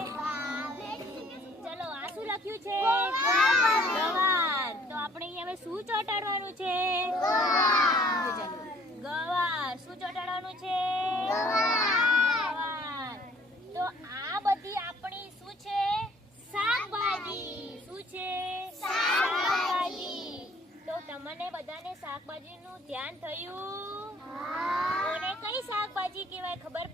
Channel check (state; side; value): normal; both; correlation 0.57